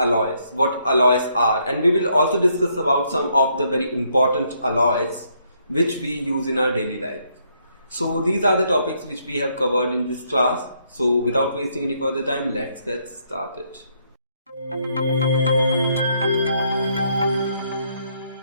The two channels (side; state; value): both; inverted; correlation -0.72